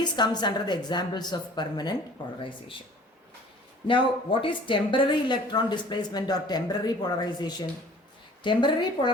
comes under the examples of permanent polarization. Now, what is temporary electron displacement or temporary polarization? Temporary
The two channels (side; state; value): both; normal; correlation 0.49